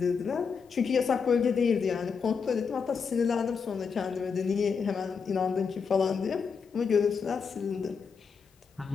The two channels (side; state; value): right; quieter; 5.8 dB